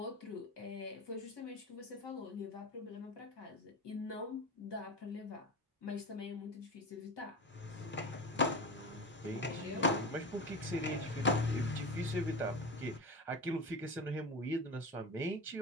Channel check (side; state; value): both; normal; correlation 0.26